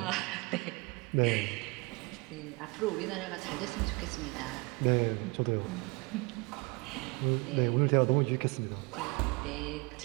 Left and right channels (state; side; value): quieter; left; 27.9 dB